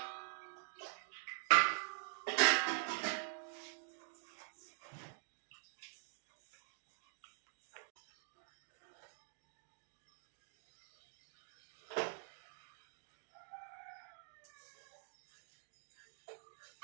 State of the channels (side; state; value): left; silent; digital silence